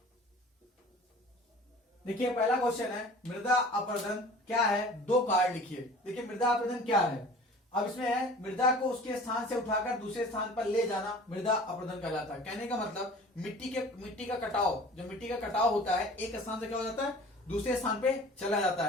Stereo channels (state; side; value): normal; both; correlation 0.44